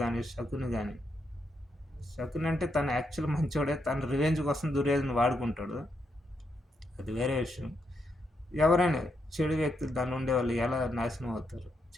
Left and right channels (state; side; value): normal; both; correlation 0.80